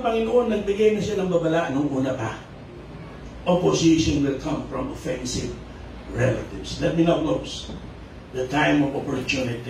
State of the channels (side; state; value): both; identical; correlation 1.00